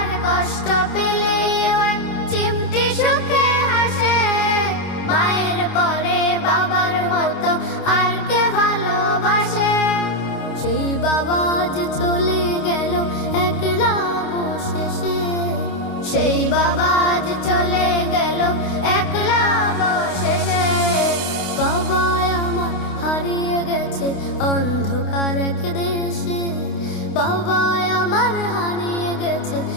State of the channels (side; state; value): right; late; 29 ms